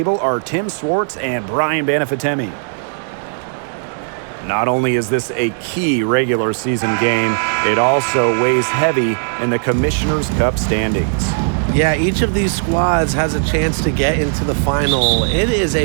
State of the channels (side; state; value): left; silent; digital silence